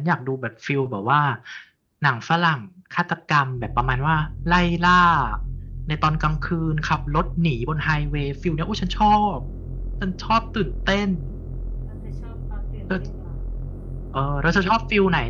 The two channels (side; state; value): both; identical; correlation 1.00